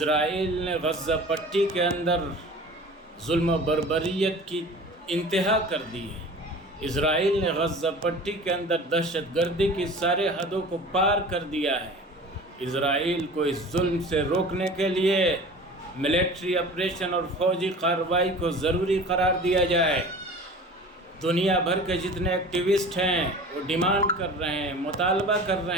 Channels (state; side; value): normal; both; correlation 0.40